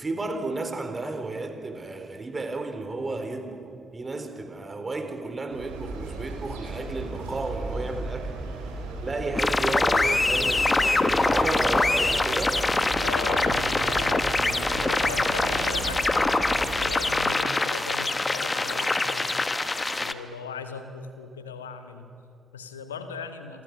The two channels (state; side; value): normal; both; correlation 0.89